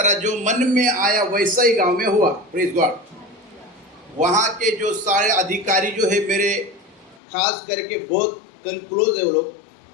जो मन में आया वैसा ही गांव में हुआ। Praise God. वहाँ के जो सारे अधिकारी जो है मेरे, खास करके बहुत क्लोज है वो लोग,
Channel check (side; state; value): right; drops out; at 7.2 s